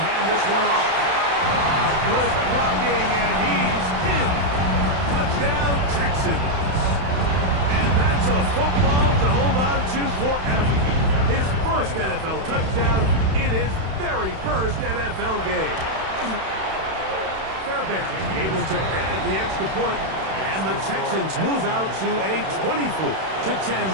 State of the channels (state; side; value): late; left; 31 ms